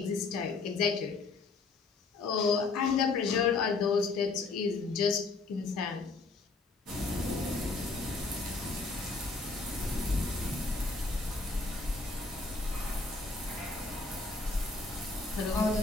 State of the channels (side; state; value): right; quieter; 3.9 dB